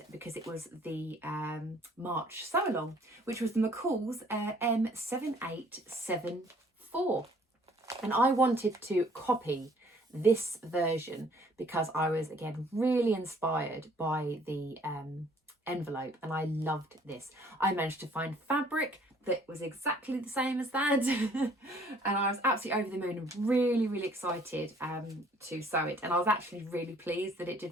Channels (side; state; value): both; normal; correlation 0.58